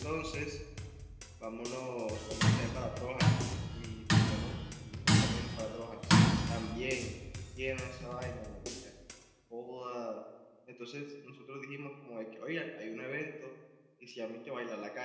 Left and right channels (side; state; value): both; identical; correlation 1.00